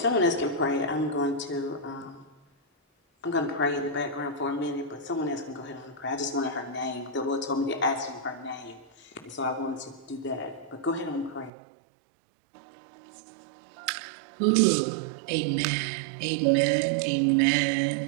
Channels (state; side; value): drops out; left; at 11.5 s